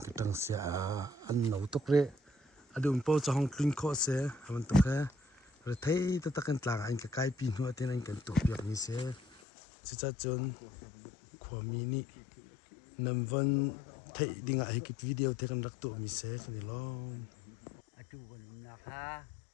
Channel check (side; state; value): right; drops out; at 9.4 s